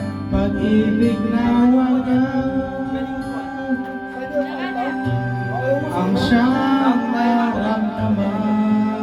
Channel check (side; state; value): both; identical; correlation 1.00